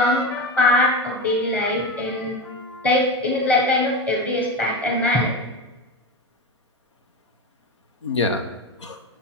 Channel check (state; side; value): normal; both; correlation 0.21